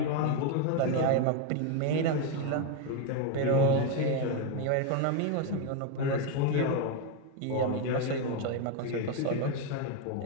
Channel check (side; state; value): both; different; correlation 0.02